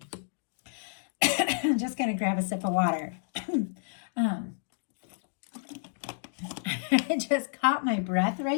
I'm just going to grab a sip of water. I just caught my breath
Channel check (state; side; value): silent; right; digital silence